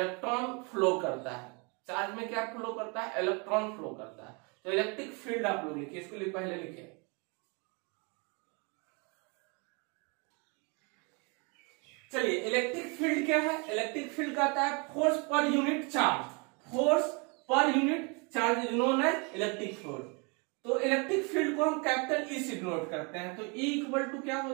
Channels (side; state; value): left; quieter; 32.0 dB